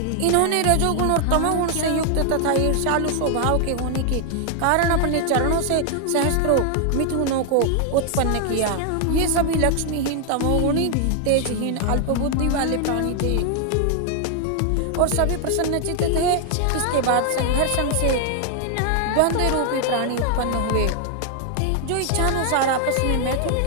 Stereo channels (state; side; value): different; both; correlation 0.00